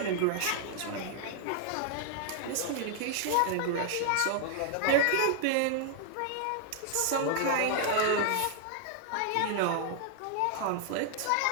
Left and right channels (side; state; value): both; different; correlation 0.00